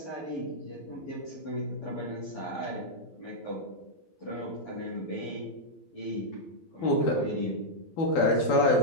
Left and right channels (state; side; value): late; right; 12 ms